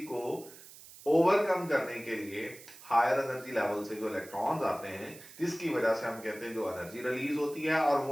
को ओवरकम करने के लिए हायर एनर्जी लेवल से जो इलेक्ट्रॉन्स आते हैं जिसकी वजह से हम कहते हैं जो एनर्जी रिलीज होती है और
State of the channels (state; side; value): noise; right; hiss, 18 dB below the sound